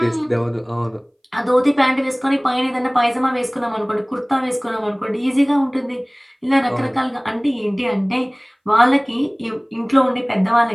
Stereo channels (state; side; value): identical; both; correlation 1.00